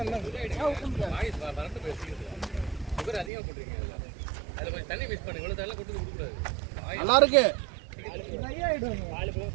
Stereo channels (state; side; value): drops out; left; at 3.3 s